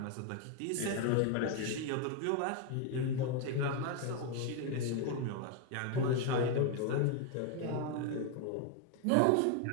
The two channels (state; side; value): different; both; correlation 0.01